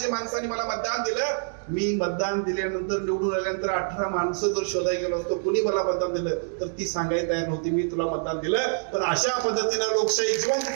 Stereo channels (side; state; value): left; silent; digital silence